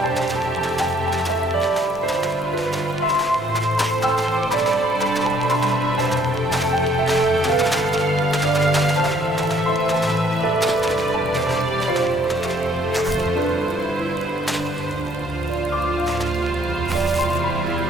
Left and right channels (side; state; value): both; normal; correlation 0.63